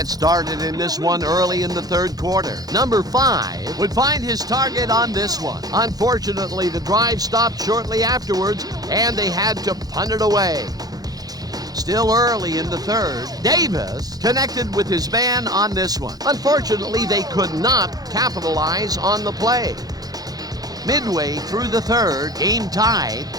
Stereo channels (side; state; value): left; late; 0.18 ms